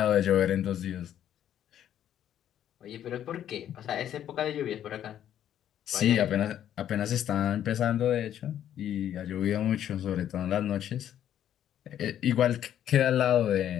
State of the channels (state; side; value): quieter; right; 10.6 dB